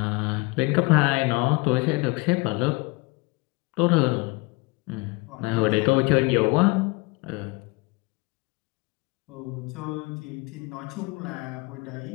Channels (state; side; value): quieter; right; 25.3 dB